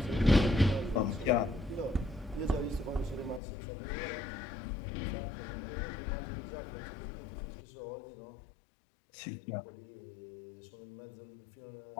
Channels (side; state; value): right; drops out; at 3.4 s